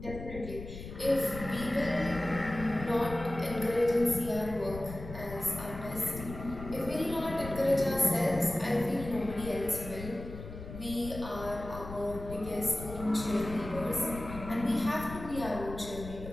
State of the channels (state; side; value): noise; left; rumble, 11 dB below the sound